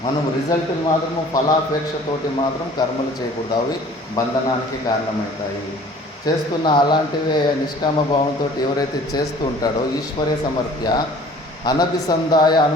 మనం రిజల్ట్లు మాత్రము ఫలాపేక్షతోటి మాత్రం కర్మలు చేయకూడదు. అవి బంధనానికి కారణమవుతాయి. చేస్తున్న అలాంటివే నిష్కామ భావంతో ఎవరైతే చేస్తూ ఉంటాడో ఈశ్వరే సమర్ప్య అనభిసంధాయ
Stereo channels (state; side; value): normal; both; correlation 0.50